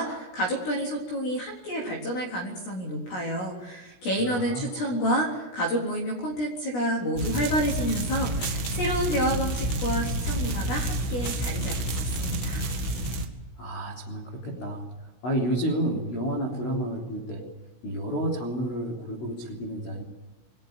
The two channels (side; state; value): right; late; 16 ms